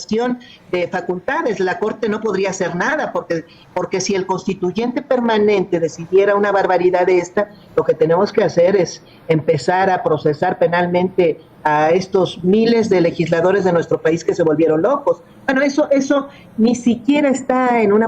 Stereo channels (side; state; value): both; identical; correlation 1.00